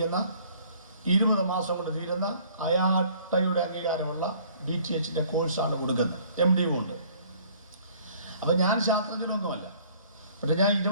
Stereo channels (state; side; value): inverted; both; correlation -0.57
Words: 20 മാസം കൊണ്ട് തീരുന്ന അയാട്ടയുടെ അംഗീകാരമുള്ള BTHൻ്റെ കോഴ്സാണ് കൊടുക്കുന്നത്. MD ഉണ്ട്. അപ്പം ഞാൻ ശാസ്ത്രജ്ഞനൊന്നുമല്ല. പക്ഷേ ഞാൻ